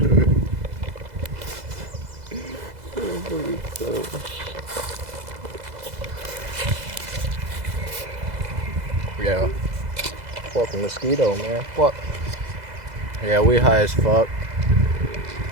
Yeah. Fucking mosquito, man. Fuck. Yeah, we high as fuck.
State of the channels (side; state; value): left; late; 2.0 ms